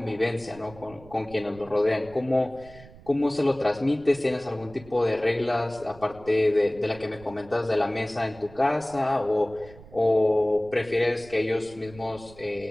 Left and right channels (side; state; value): right; noise; rumble, 21 dB below the sound